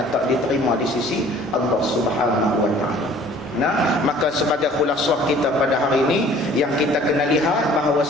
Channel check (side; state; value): both; normal; correlation 0.52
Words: tak diterima di sisi Allah Subhanahu wa taala. Nah, maka sebagai khulasah kita pada hari ini yang kita kena lihat